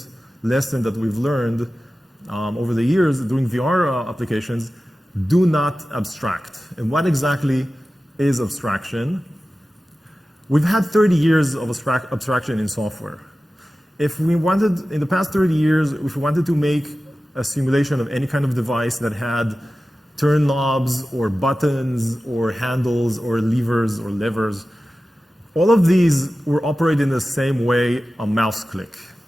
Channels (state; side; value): normal; both; correlation 0.95